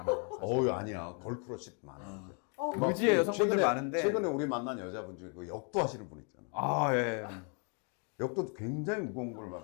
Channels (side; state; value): right; quieter; 39.5 dB